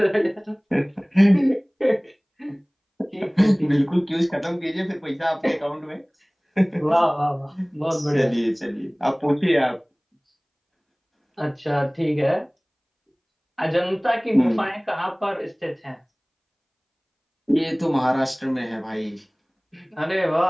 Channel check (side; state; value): both; identical; correlation 1.00